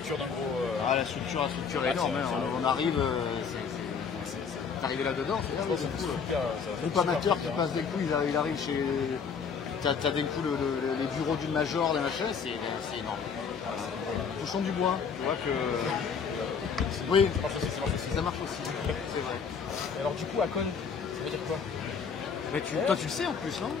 d'un gros. La structure est énorme. On arrive. C'est arrivé là-dedans. C'est super. Groupe amateur qui passe d'un coup, il arrive chez. T'as d'un coup les bureaux d'une major, d'un machin, c'est énorme. Touchons du bois. Tu vois que. Oui, ça marche aussi. C'est vrai. Et alors, du coup, Akon, ça veut dire quoi? Mais toi, tu le sais en plus, non?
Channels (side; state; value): right; quieter; 6.1 dB